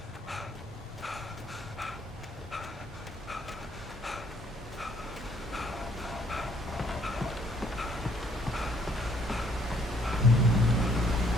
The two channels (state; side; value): normal; both; correlation 0.65